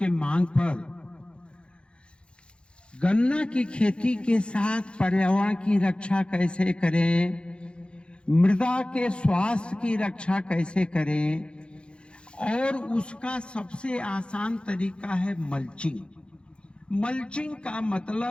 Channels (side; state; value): right; late; 0.056 ms